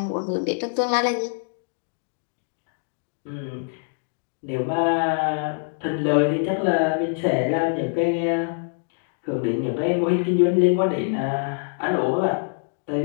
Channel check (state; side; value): silent; right; digital silence